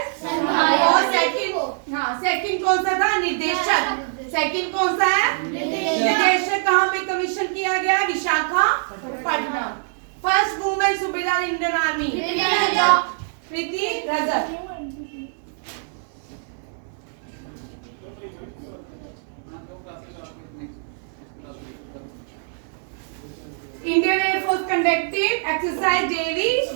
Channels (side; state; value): left; silent; 63 dB below the other